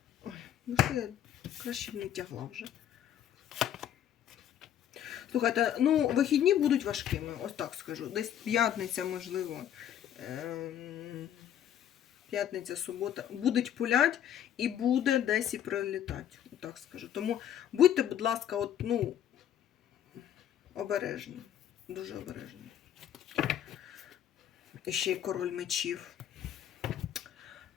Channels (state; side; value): quieter; right; 10.4 dB